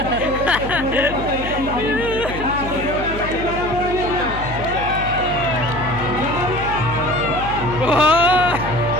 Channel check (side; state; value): left; noise; hum, 9 dB below the sound